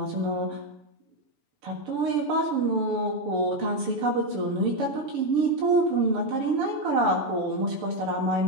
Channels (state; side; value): late; left; 6.9 ms